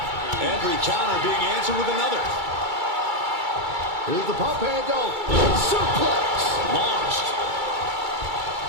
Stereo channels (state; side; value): late; left; 2.3 ms